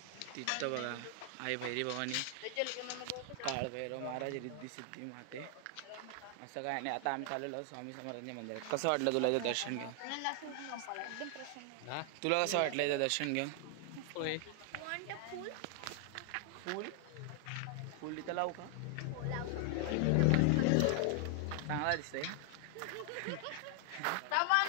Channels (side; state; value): both; different; correlation 0.00